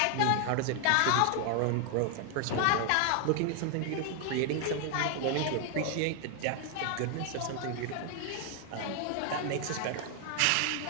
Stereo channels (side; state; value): both; different; correlation 0.00